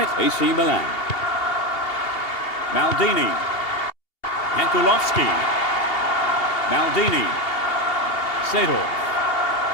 AC Milan. Maldini. Jankulovski. Maldini. Sedorf.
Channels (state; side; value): late; right; 2.8 ms